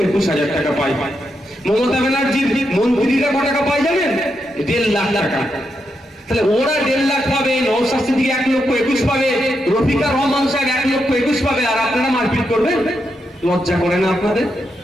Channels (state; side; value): normal; both; correlation 0.83